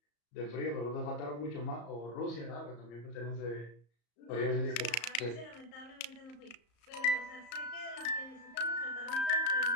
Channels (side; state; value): right; late; 34 ms